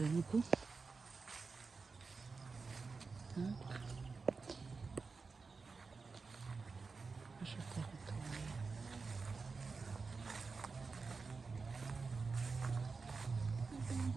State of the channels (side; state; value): left; quieter; 4.5 dB